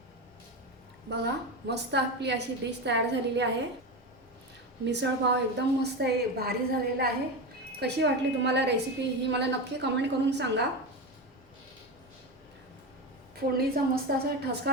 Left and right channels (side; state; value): both; normal; correlation 0.19